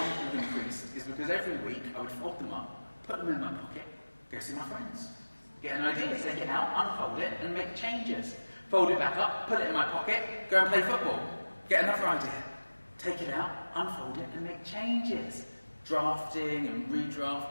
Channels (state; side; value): inverted; both; correlation -1.00